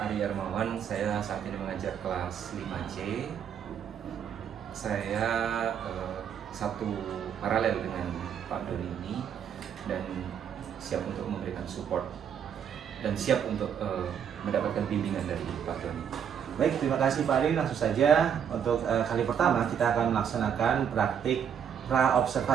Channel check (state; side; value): quieter; left; 8.2 dB